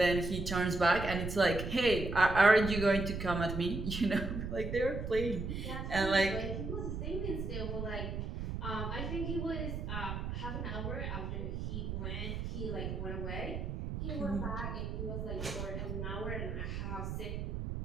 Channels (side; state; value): right; noise; rumble, 4 dB below the sound